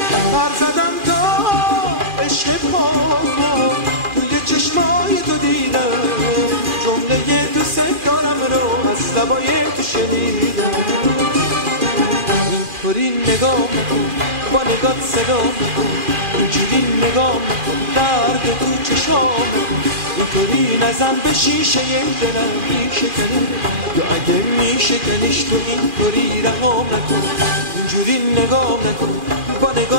پر زدم تا عشق پاکو توی چشمای تو دیدم، جمله دوست دارم رو از لبای تو شنیدم. اینطوری نگاه نکن، با نگات صدا نکن، اینجوری نگاه نکن، درد تو چشام نکن. اینطوری نزن به شیشه دلم میشکنه، یا اگه میشکنیش تو اینطوری رهام نکن. اینجوری نگاه نکن، با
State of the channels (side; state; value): left; late; 2.4 ms